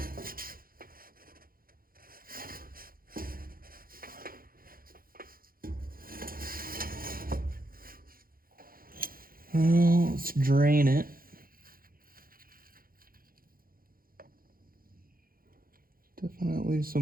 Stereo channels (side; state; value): left; late; 0.42 ms